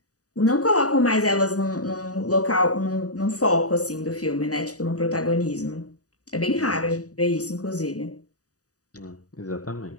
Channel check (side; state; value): right; late; 0.67 ms